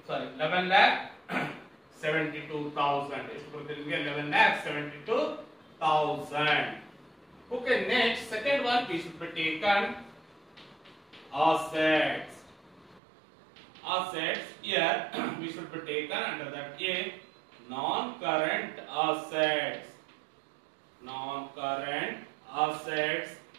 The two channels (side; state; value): left; drops out; at 13.0 s